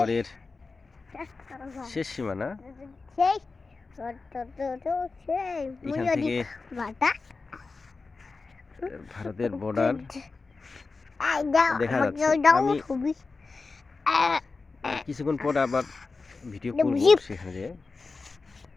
শেষ সীমানা। এখান থেকে ভারতের বর্ডার দেখা যাচ্ছে। আমি কিছুক্ষণ পর আবার ভিডিও করব সেখানে যেয়ে।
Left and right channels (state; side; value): quieter; right; 4.1 dB